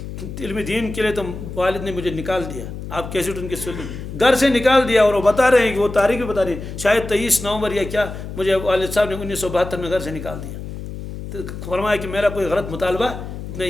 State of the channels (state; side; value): noise; left; hum, 9 dB below the sound